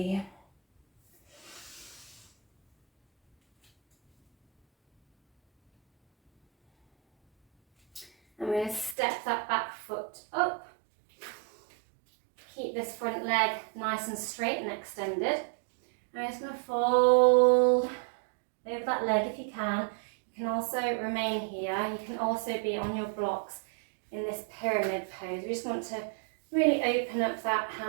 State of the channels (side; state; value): left; drops out; at 9.0 s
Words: I'm going to step that back foot up. Keep this front leg nice and straight and extended. I'm just going to fold over that leg if you can. You can also remain here. You can also be on your blocks in this pyramid pose. We just want to really open up that